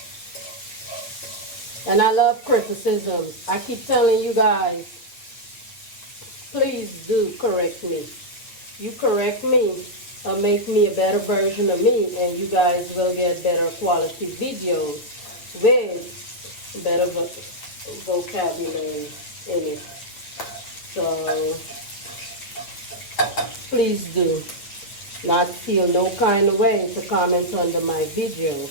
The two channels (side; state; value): right; late; 9.1 ms